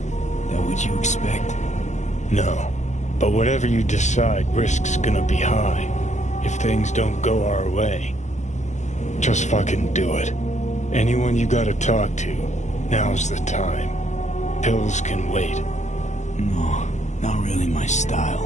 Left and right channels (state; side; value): late; right; 0.34 ms